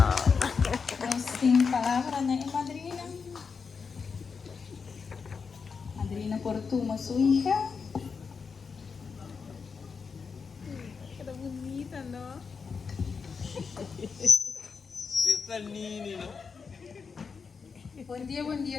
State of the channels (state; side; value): quieter; right; 5.5 dB